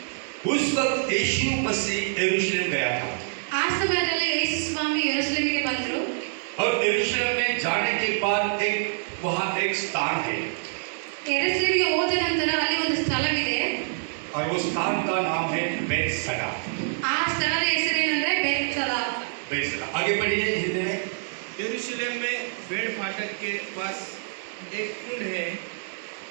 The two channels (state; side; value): silent; left; 61 dB below the other